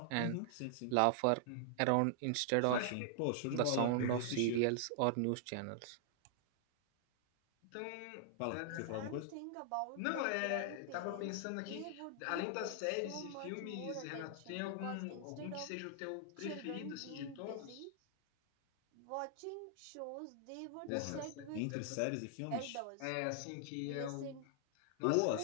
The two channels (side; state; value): both; different; correlation -0.01